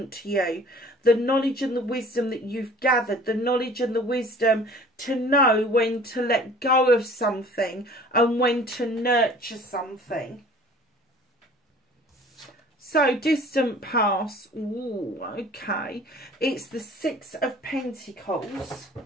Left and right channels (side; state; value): both; normal; correlation 0.48